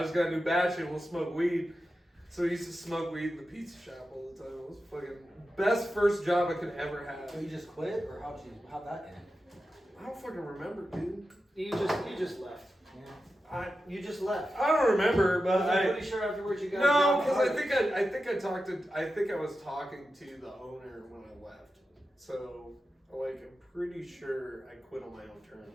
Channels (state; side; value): normal; both; correlation 0.91